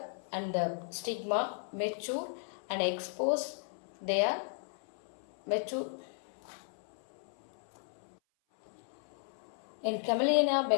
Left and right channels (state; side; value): silent; right; 54 dB below the other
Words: and the stigma mature and expose their mature. In Camellia